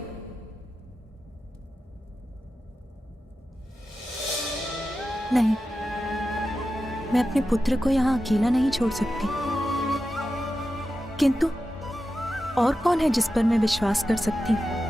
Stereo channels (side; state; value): both; normal; correlation 0.92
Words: नहीं, मैं अपने पुत्र को यहाँ अकेला नहीं छोड़ सकती। किंतु और कौन है जिस पर मैं विश्वास कर सकती हूँ?